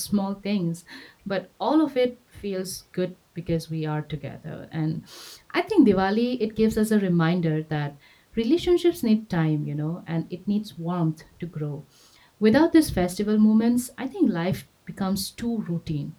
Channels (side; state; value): both; identical; correlation 1.00